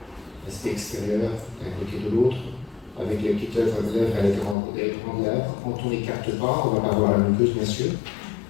L'aspect extérieur d'un côté de l'autre, avec les petites lèvres et les grandes lèvres. Quand on n'écarte pas, on ne va pas voir la muqueuse, bien sûr.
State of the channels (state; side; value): drops out; right; at 4.5 s